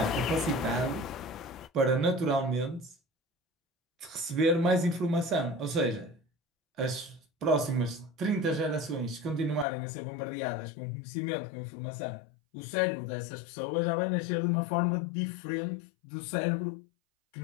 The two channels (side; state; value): right; drops out; at 9.7 s